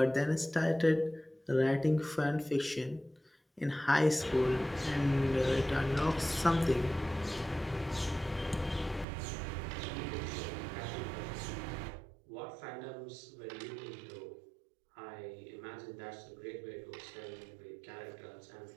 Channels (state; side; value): drops out; left; at 9.1 s